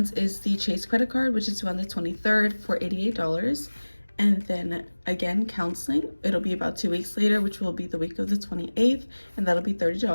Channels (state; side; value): inverted; both; correlation -1.00